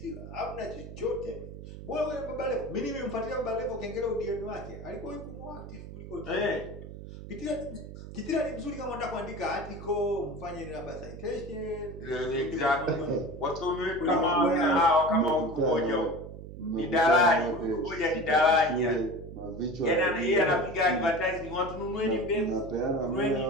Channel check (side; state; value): right; noise; hum, 12 dB below the sound